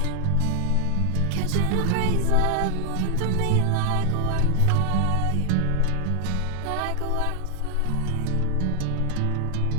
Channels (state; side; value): different; both; correlation 0.00